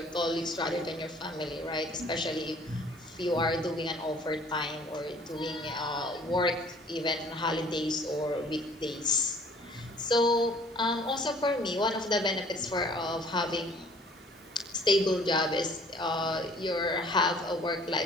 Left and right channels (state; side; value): normal; both; correlation 0.54